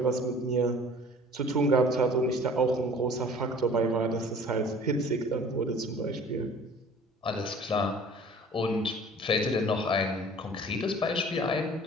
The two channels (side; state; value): both; normal; correlation 0.48